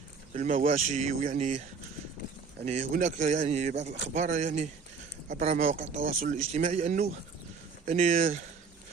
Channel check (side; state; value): left; quieter; 5.3 dB